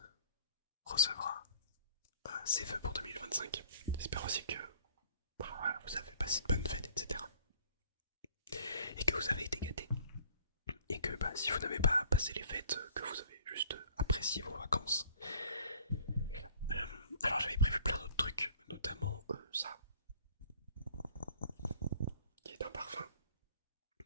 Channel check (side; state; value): both; inverted; correlation -0.53